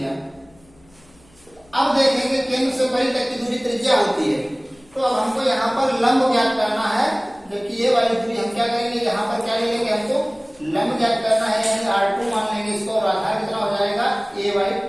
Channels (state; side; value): noise; left; hum, 30 dB below the sound